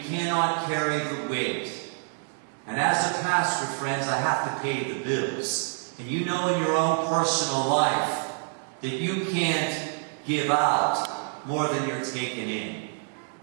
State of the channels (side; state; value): left; silent; 60 dB below the other